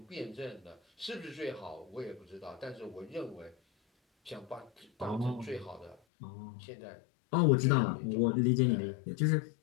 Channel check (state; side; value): drops out; right; at 6.0 s